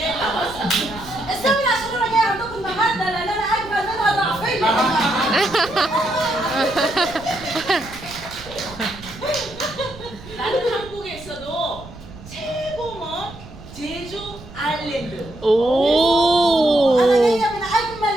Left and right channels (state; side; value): noise; right; rumble, 17 dB below the sound